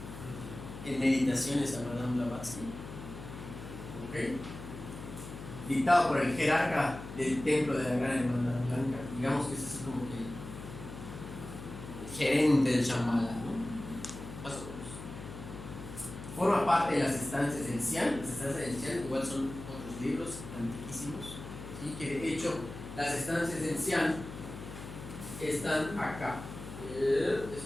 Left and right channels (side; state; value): left; noise; hum, 11 dB below the sound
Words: en meditaciones a Madame Blavatsky. ¿Okay? Dictado por el jerarca del templo de la Gran Hermandad Blanca. Digamos que es así como que el gerente del Shambhala, ¿no? Más o menos. Forma parte de las estancias del Xian. Las estancias del Xian igual son otros libros antiquísimos, ¿sí? Que de hecho las estancias del Xian están acá. Es